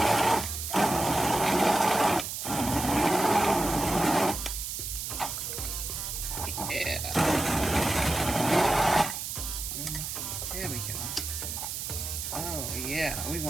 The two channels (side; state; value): right; noise; hiss, 5 dB below the sound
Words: There we go. Oh yeah, we